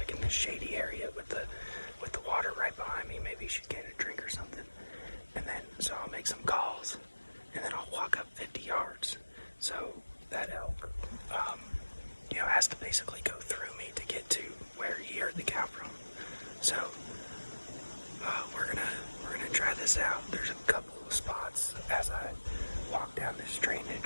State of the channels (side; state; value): both; inverted; correlation -1.00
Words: in this shady area with the water right behind me. Maybe she's getting a drink or something. this out. There's a couple of spots as I walk down this